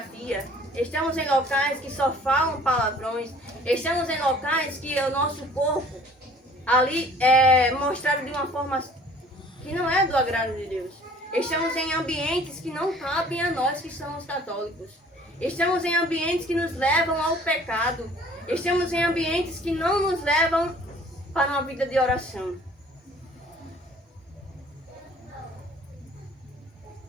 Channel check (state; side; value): normal; both; correlation 0.52